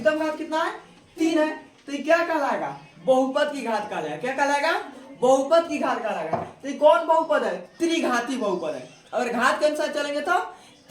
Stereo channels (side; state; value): both; identical; correlation 1.00